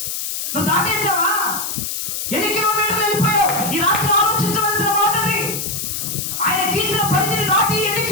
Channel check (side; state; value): left; noise; hiss, 4 dB below the sound